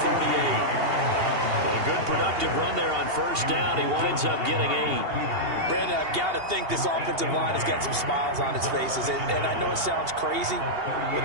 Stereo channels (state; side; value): late; left; 2.8 ms